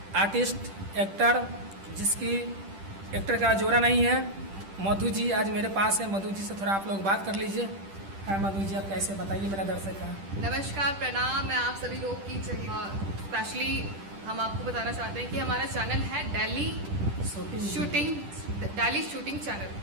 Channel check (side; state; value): left; late; 10 ms